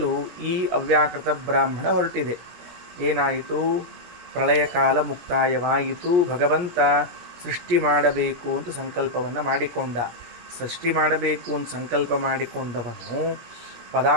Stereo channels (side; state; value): left; late; 17 ms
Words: ಈ ಅವ್ಯಾಕೃತ ಬ್ರಾಹ್ಮಣ ಹೊರಟಿದೆ. ಏನಾಯಿತು? ಪ್ರಳಯ ಕಾಲ ಮುಕ್ತಾಯವಾಯಿತು. ಭಗವಂತ ಸೃಷ್ಟಿ ಮಾಡಬೇಕು ಅಂತ ಸಂಕಲ್ಪವನ್ನು ಮಾಡಿಕೊಂಡ. ಸೃಷ್ಟಿ ಮಾಡಬೇಕು ಅಂತ ಸಂಕಲ್ಪ ಮಾಡಿಕೊಂಡವನು